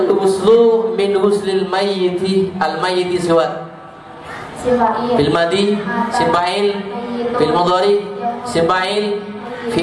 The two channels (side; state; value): both; identical; correlation 1.00